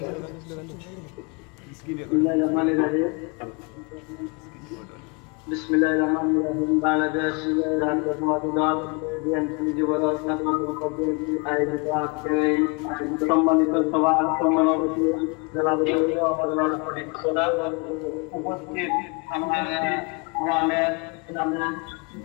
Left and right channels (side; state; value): right; quieter; 30.8 dB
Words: বিসমিল্লাহিররহমানিররহিম। বাংলাদেশ জাতীয়তাবাদী দল বিএনপি যুবদল আয়োজিত আজকের এই সম্মানিত সভা সমাবেশে উপস্থিত আমাদের গ্রামের